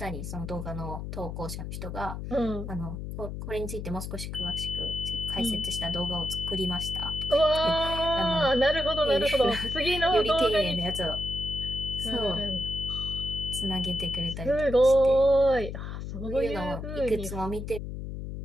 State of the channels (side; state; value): left; noise; hum, 7 dB below the sound